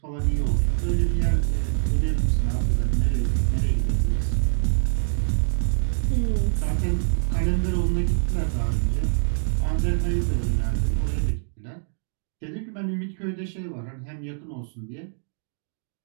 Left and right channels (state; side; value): silent; left; digital silence